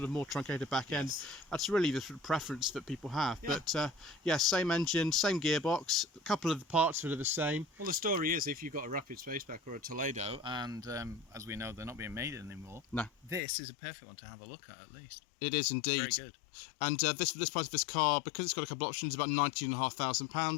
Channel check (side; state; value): right; drops out; at 13.4 s